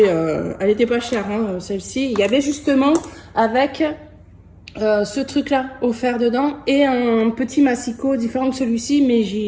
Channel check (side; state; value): both; identical; correlation 1.00